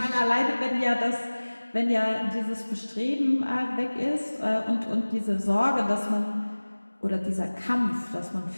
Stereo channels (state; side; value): inverted; both; correlation -1.00